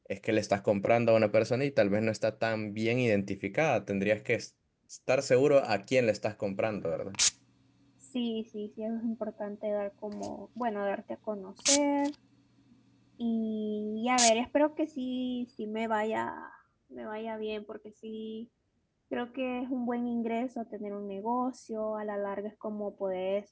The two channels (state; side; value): identical; both; correlation 1.00